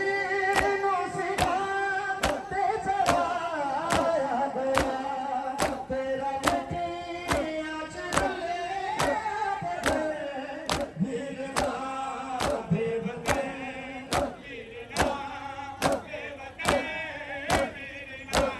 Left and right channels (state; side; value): identical; both; correlation 1.00